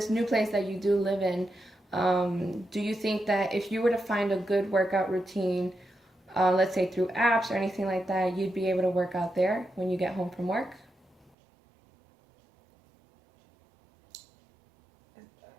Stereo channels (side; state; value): left; drops out; at 11.4 s